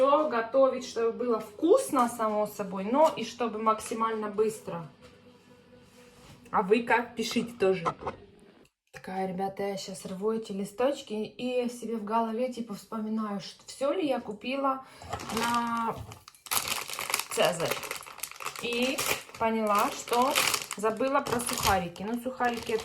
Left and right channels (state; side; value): identical; both; correlation 1.00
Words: готовить, чтобы было вкусно, само собой, но и чтобы максимально быстро. А вы как? Пишите тоже. Такая, ребята, я сейчас рву эти листочки и себе в голове типа вспоминаю, что все ли я купила на Цезарь. И поняла, что забыла про сухарики. Но сухарики